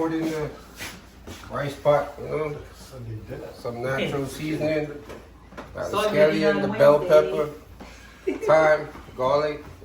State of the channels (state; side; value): identical; both; correlation 1.00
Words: in the rice pot, you know? Some natural seasoning. Got the scallion, the bell pepper, thyme, garlic,